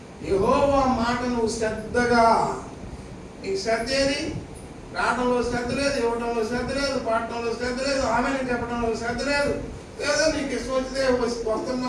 యెహోవా మాట నువ్వు శ్రద్ధగా, నీకు శ్రద్ధ ఏది? రావడంలో శ్రద్ధ లేదు, ఇవ్వడంలో శ్రద్ధ లేదు, పాడటంలో శ్రద్ధ లేదు, ఆమెను చెప్పడంలో శ్రద్ధ లేదు, ఏదో నీకు ఇష్టం వచ్చితే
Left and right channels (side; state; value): both; identical; correlation 1.00